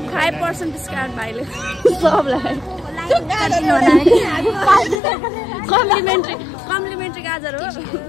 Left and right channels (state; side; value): drops out; right; at 5.0 s